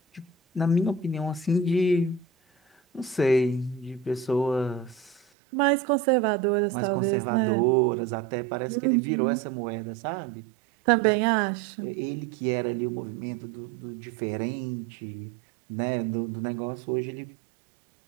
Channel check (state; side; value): drops out; left; at 5.2 s